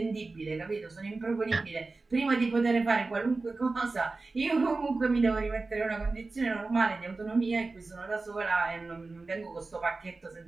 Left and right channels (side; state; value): left; quieter; 3.6 dB